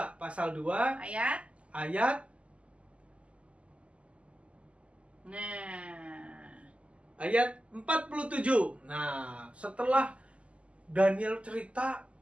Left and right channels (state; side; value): late; left; 0.059 ms